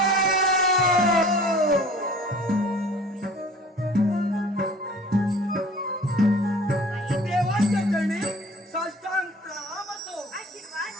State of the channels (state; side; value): normal; both; correlation 0.47